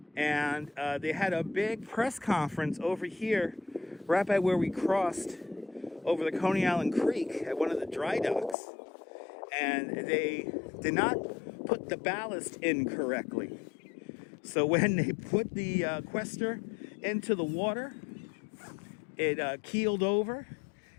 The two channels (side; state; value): right; drops out; at 8.6 s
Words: And they had a big press conference over here, right by where we crossed over the Coney Island Creek at one of the dry docks. And they did not put the ballast in correctly. So when they put the quester into the water, it keeled over